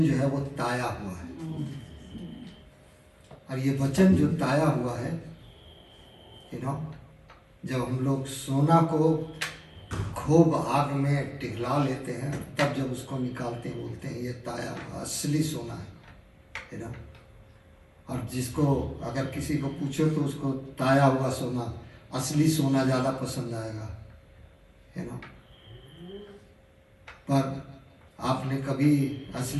जो है वो ताया हुआ है, और ये वचन जो ताया हुआ है, जब हम लोग सोना को खूब आग में पिघला लेते हैं, तब जब उसको निकालते हैं बोलते हैं ये ताया हुआ असली सोना है, और जिसको अगर किसी को पूछो तो उसको ताया हुआ सोना, असली सोना ज़्यादा पसंद आएगा, पर आपने कभी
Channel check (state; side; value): identical; both; correlation 1.00